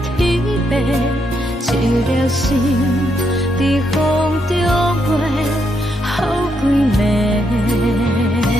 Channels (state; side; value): normal; both; correlation 0.78